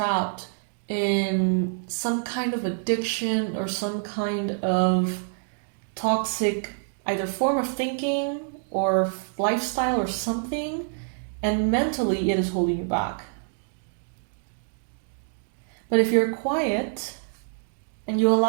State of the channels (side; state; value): left; silent; digital silence